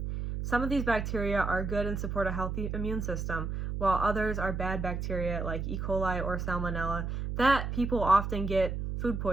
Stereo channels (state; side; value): noise; right; hum, 3 dB below the sound